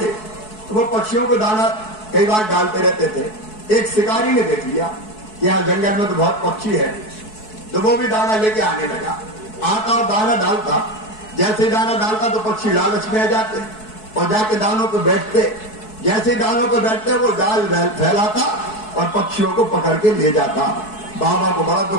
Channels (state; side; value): late; right; 4.7 ms